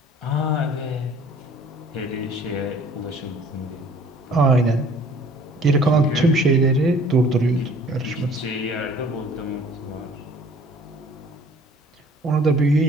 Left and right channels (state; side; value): normal; both; correlation 0.53